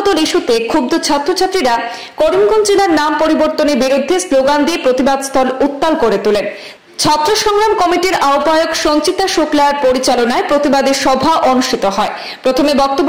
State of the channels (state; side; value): identical; both; correlation 1.00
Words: ইস্যুতে ক্ষুব্ধ ছাত্রছাত্রীরা করিমগঞ্জ জেলার নাম পরিবর্তনের বিরুদ্ধে স্লোগান দিয়ে প্রতিবাদ স্থল উত্তাল করে তোলেন। ছাত্র সংগ্রাম কমিটির আহ্বায়ক সঞ্চিতা শুক্লার পরিচালনায় প্রতিবাদী সভা অনুষ্ঠিত হয়। প্রথমে